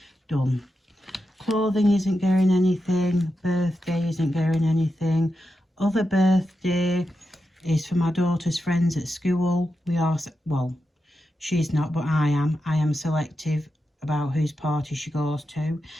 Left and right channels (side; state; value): both; normal; correlation 0.88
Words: done. Clothing isn't getting anything. Birthday isn't getting anything. Other birthday is for my daughter's friends at school. We are, well, she's not, but I am selective about whose party she goes to,